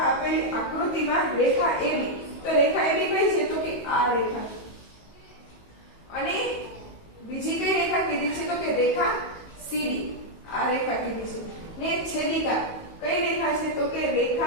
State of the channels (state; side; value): late; right; 18 ms